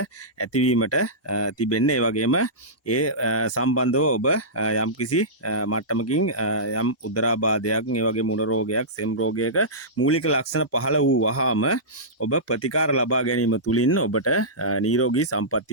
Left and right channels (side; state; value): both; normal; correlation -0.17